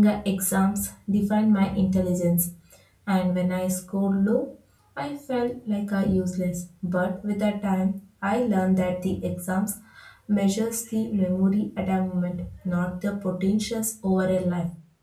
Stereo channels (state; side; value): identical; both; correlation 1.00